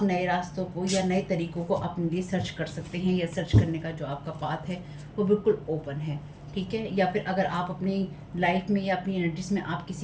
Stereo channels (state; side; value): identical; both; correlation 1.00